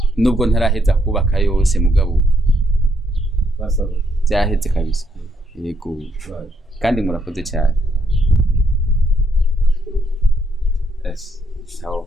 nubwo ntaraheza kubaka yose mugabo basaba byaheze kabisa yego kandi murakoze cyane sawa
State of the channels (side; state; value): both; normal; correlation 0.74